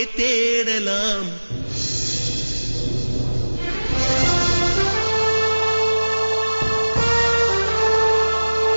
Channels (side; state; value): both; inverted; correlation -1.00